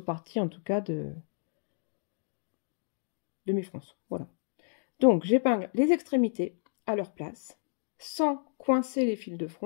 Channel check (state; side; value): silent; right; digital silence